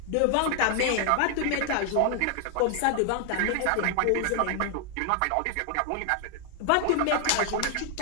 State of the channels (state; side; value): different; both; correlation 0.00